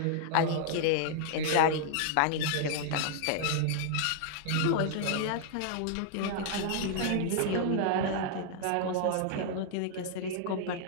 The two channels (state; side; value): different; both; correlation -0.01